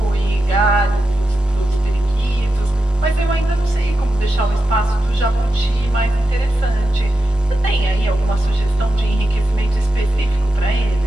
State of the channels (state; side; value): normal; both; correlation 0.89